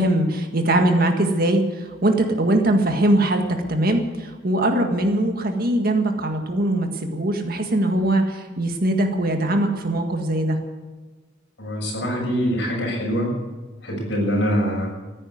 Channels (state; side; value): normal; both; correlation 0.62